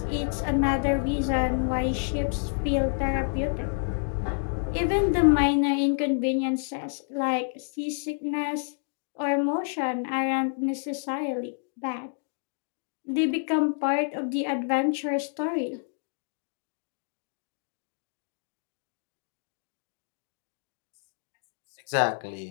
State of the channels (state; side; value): silent; right; digital silence